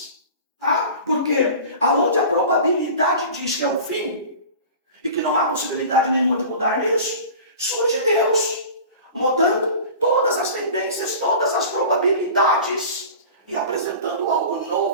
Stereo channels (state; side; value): inverted; both; correlation -0.37